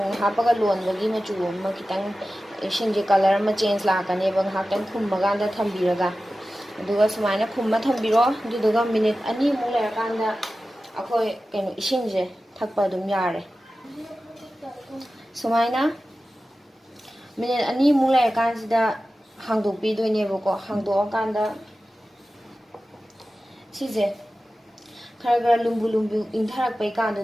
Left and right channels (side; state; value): both; normal; correlation 0.95